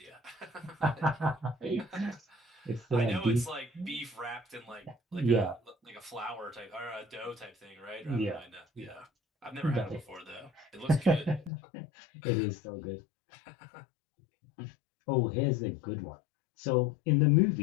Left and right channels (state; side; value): drops out; right; at 11.5 s